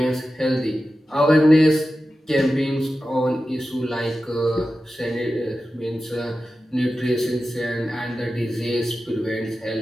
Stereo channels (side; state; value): both; normal; correlation 0.93